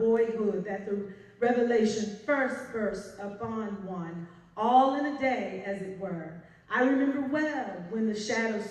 that the revelation first bursts upon one, all in a day, as it were. I remember well when the shadows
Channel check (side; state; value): both; identical; correlation 1.00